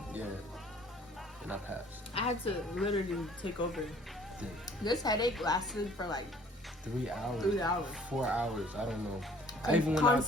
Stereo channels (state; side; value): normal; both; correlation 0.55